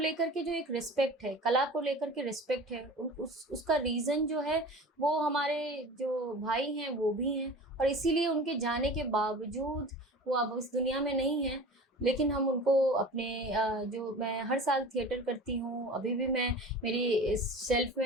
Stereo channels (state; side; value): normal; both; correlation 0.38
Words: के जो एक रिस्पेक्ट है, कला को लेकर के रिस्पेक्ट है, उसका रीज़न जो है वो हमारे जो भाई हैं वो भी हैं, और इसीलिए उनके जाने के बावजूद वो अब इस दुनिया में नहीं हैं, लेकिन हम उनको अपने जो मैं हर साल थिएटर करती हूँ, अभी भी मैं मेरी इस शेल्फ